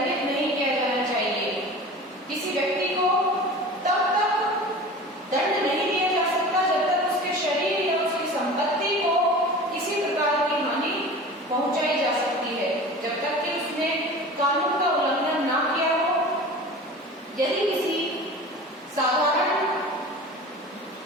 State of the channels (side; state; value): both; normal; correlation 0.37